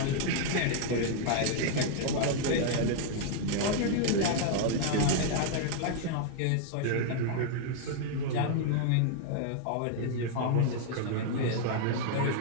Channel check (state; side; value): different; both; correlation -0.01